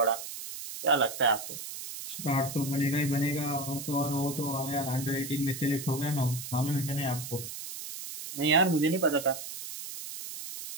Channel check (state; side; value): noise; right; hiss, 9 dB below the sound